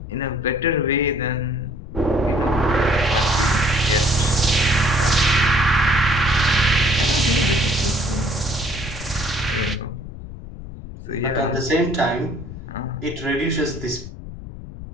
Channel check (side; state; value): left; noise; rumble, 12 dB below the sound